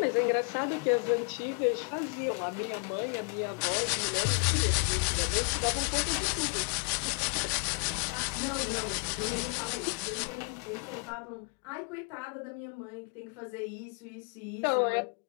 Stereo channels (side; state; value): right; quieter; 35.6 dB